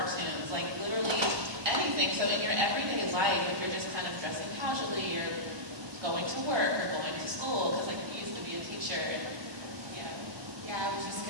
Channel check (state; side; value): late; left; 1.2 ms